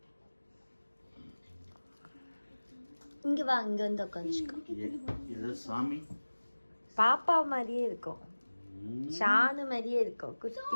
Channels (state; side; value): inverted; both; correlation -1.00